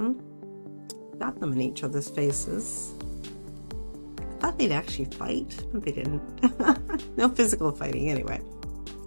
Got them in each other's faces. I thought they'd actually fight, but they didn't. No physical fighting anyway.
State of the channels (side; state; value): both; inverted; correlation -1.00